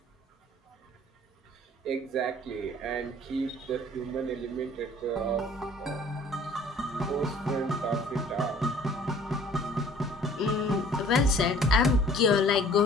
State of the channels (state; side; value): normal; both; correlation 0.53